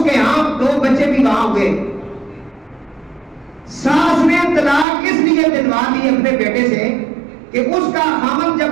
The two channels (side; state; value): left; drops out; at 4.9 s